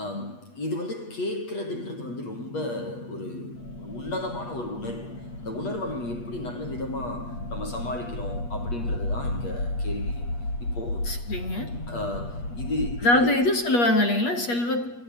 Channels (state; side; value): late; right; 8.4 ms